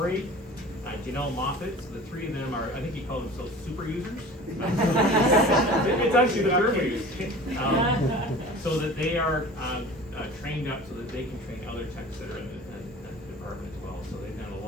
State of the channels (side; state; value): both; normal; correlation 0.41